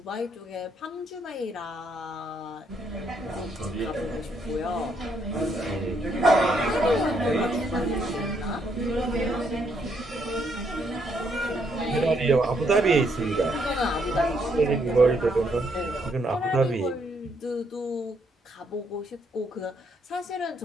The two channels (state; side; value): normal; both; correlation 0.73